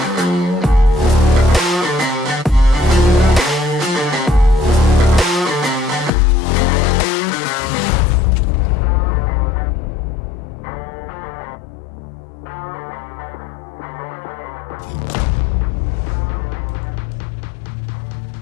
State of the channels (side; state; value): right; drops out; at 6.1 s